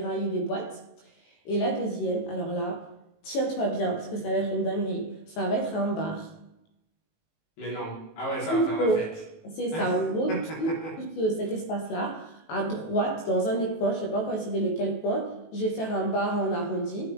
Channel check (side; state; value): right; late; 19 ms